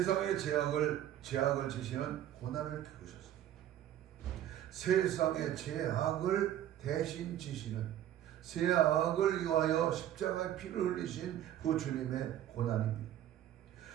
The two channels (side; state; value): left; quieter; 11.8 dB